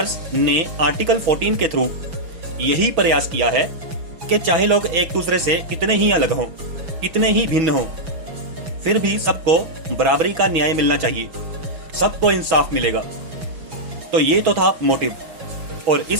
ने आर्टिकल 14 के थ्रू यही प्रयास किया है कि चाहे लोग एक दूसरे से कितने ही अलग हों, कितने ही भिन्न हों, फिर भी सबको बराबरी का न्याय मिलना चाहिए, सबको इंसाफ मिलेगा। तो ये तो था मोटिव, और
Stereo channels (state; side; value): late; left; 5.9 ms